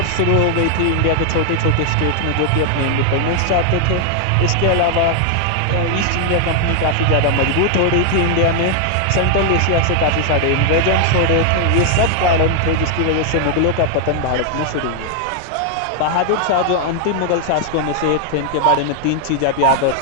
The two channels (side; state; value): both; different; correlation 0.00